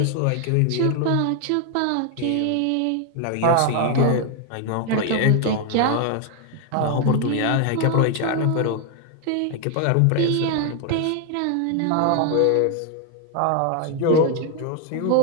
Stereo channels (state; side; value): different; both; correlation 0.00